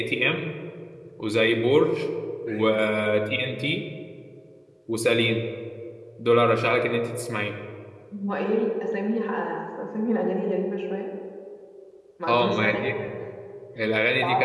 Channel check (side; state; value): both; identical; correlation 1.00